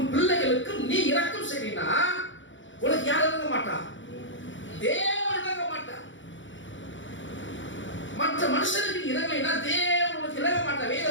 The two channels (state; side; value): late; right; 0.55 ms